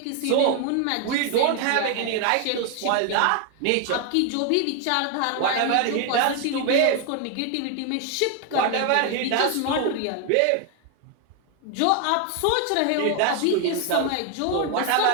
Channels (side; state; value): both; different; correlation 0.01